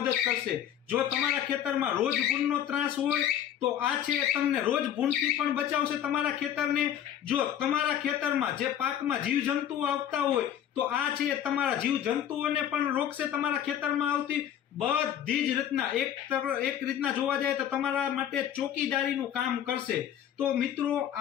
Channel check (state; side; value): quieter; right; 10.2 dB